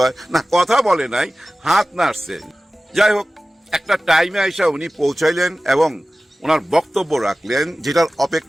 হয়। না, কথা বলে নাই, হাত নাড়ছে। যাই হোক, একটা টাইমে আইসা উনি পৌঁছাইলেন এবং ওনার বক্তব্য রাখলেন, যেটার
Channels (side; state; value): both; normal; correlation 0.96